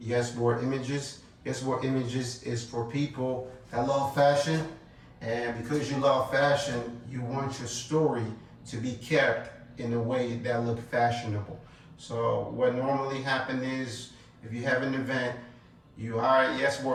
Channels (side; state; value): both; identical; correlation 1.00